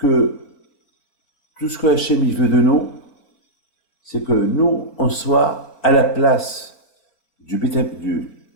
tout ce que Hachem il veut de nous, c'est que nous, on soit à la place du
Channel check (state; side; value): late; right; 4.6 ms